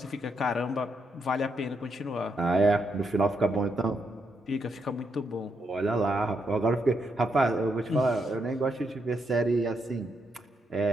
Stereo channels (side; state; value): both; normal; correlation 0.79